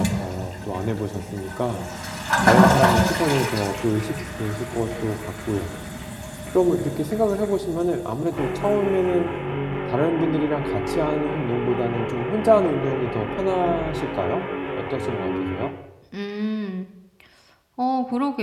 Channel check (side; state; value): both; identical; correlation 1.00